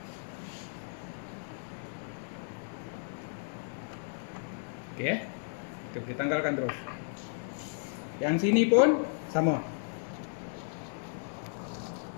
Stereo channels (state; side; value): silent; right; digital silence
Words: Okey, kita boleh tanggalkan terus. Yang sini pun sama.